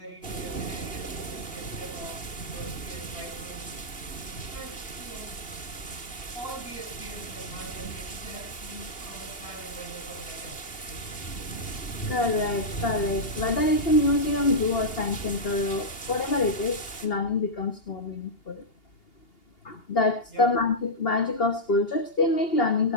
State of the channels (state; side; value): late; right; 2.8 ms